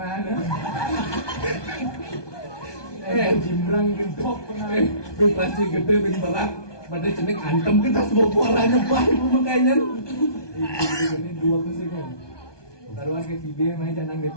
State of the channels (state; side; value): late; right; 1.2 ms